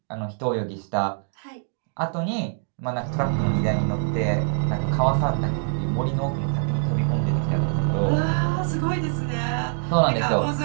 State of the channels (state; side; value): silent; left; 56 dB below the other